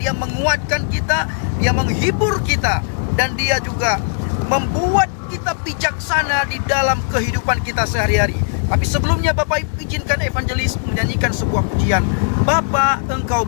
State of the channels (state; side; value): silent; right; 62 dB below the other